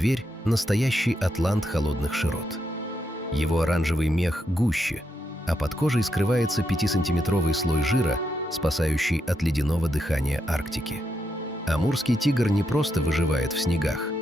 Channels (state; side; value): normal; both; correlation 0.82